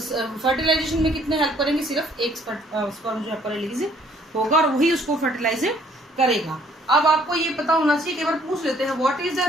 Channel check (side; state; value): both; normal; correlation 0.62